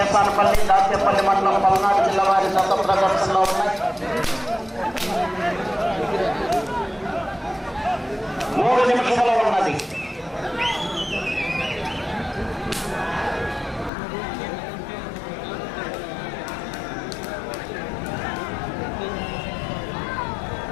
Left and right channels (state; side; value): drops out; right; at 13.9 s